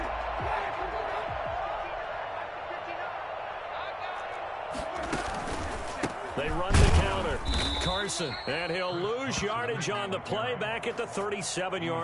Carson. And he'll lose yardage on the play back at the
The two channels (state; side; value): identical; both; correlation 1.00